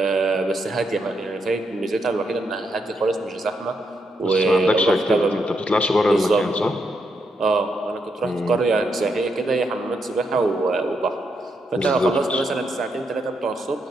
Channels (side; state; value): both; normal; correlation 0.80